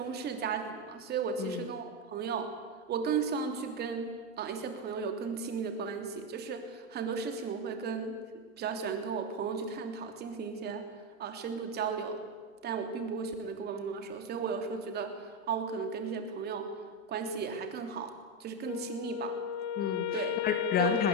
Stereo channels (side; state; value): both; normal; correlation 0.08